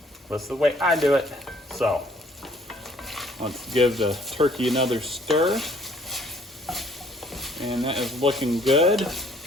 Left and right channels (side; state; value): both; normal; correlation 0.60